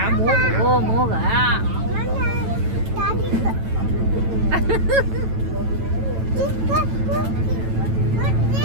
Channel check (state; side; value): late; left; 9.1 ms